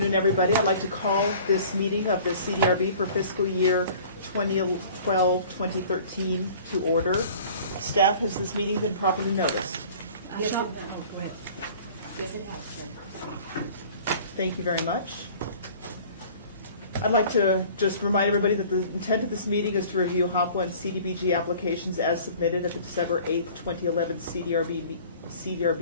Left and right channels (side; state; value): both; inverted; correlation -0.47